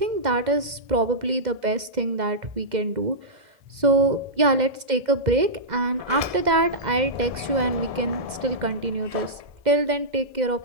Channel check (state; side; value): late; left; 2.1 ms